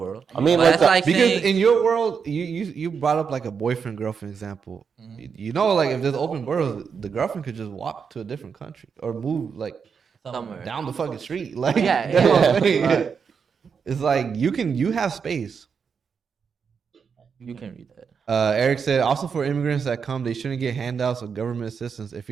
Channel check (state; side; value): quieter; left; 6.2 dB